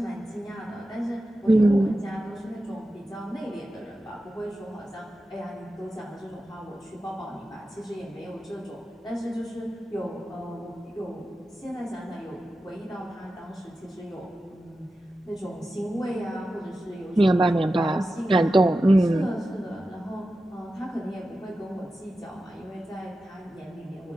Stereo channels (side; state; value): both; normal; correlation 0.92